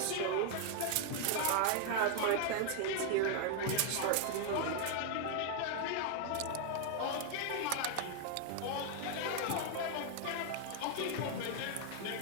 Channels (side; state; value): both; different; correlation 0.00